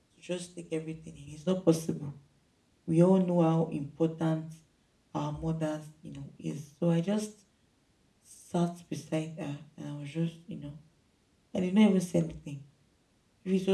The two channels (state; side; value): identical; both; correlation 1.00